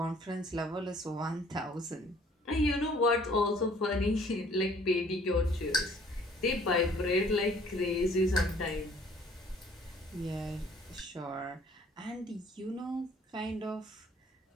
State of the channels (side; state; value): both; normal; correlation 0.57